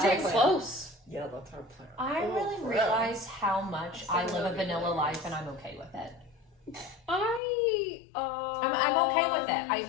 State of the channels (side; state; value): right; drops out; at 7.4 s